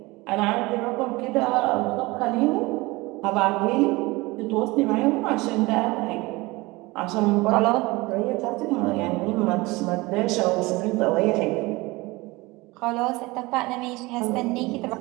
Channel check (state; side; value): quieter; left; 22.2 dB